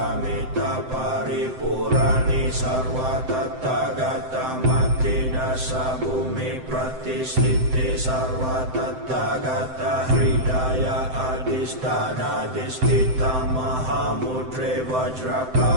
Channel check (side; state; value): left; late; 7.8 ms